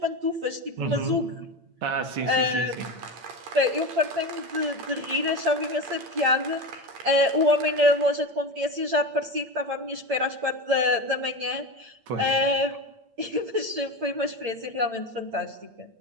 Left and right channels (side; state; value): left; late; 8.8 ms